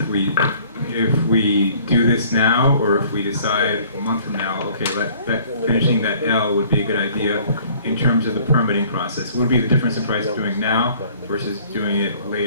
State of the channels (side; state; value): both; inverted; correlation -0.55